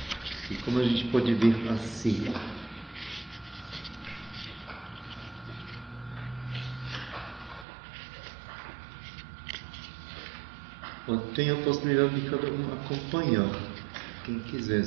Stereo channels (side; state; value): left; drops out; at 7.7 s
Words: E como a gente pode ver assim. Tem a possibilidade de cada um acompanhar, quem